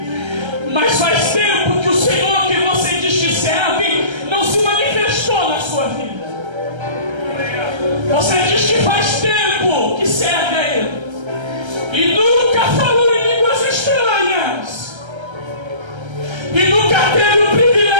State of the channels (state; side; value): late; left; 1.3 ms